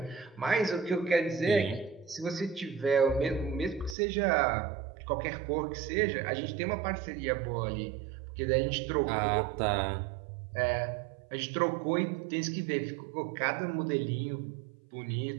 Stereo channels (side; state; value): left; drops out; at 4.0 s